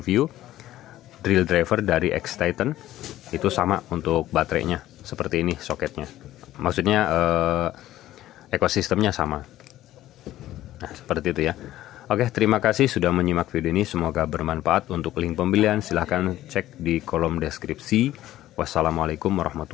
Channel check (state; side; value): quieter; right; 14.3 dB